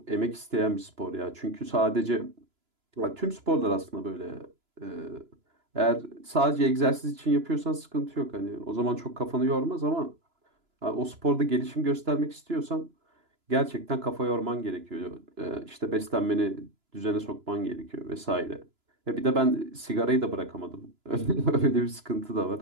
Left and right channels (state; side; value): late; left; 2.9 ms